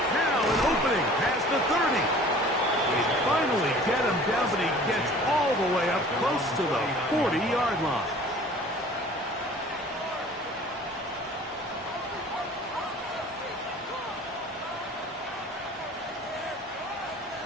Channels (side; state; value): both; normal; correlation 0.47